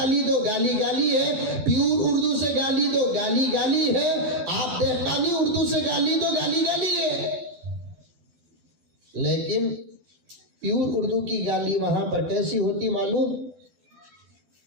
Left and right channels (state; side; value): late; left; 12 ms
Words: दो गाली गाली है, प्यूर उर्दू से गाली दो गाली गाली है, आप देहकानी उर्दू से गाली दो गाली गाली है। लेकिन प्यूर उर्दू की गाली वहां पर कैसी होती मालूम,